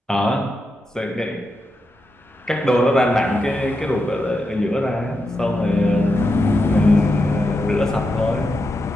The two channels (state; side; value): normal; both; correlation 0.86